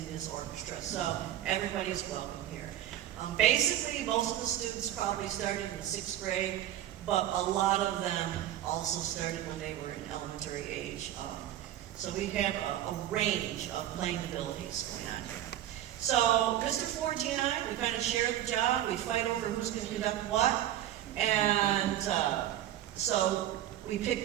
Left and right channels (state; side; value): quieter; left; 12.3 dB